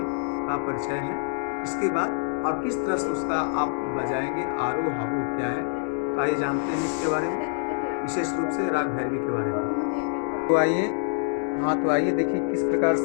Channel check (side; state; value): right; silent; digital silence